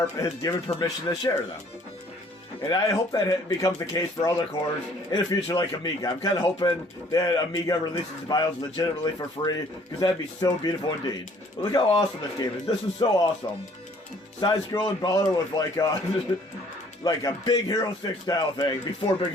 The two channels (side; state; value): both; normal; correlation 0.58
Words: has given permission to share them. And I hope that becomes the case for other cores in the future like Amiga. I'm kind of hoping that Amiga releases the BIOS legitimately for free, because that'd be so beautiful indeed. But look how awesome this game is. This is so awesome. Side-scrolling brawler with like a Big Hero 6 style thing, before Big